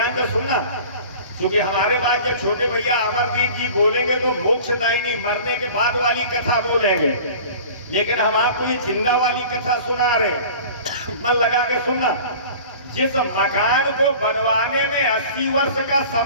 से सुनना, क्योंकि हमारे बाद जब छोटे भैया अमरदीप जी बोलेंगे तो मोक्षदायिनी मरने के बाद वाली कथा बोलेंगे, लेकिन हम आपको ये जिंदा वाली कथा सुना रहे। मन लगा के सुनना। जिस मकान को बनवाने में 80 वर्ष का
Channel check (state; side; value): inverted; both; correlation -0.42